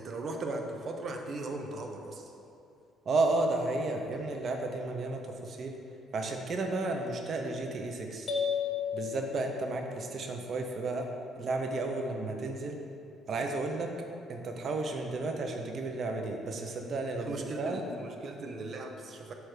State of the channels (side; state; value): both; normal; correlation 0.69